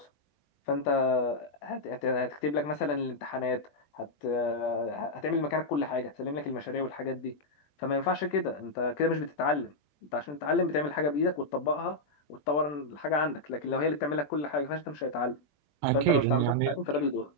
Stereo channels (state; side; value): late; right; 20 ms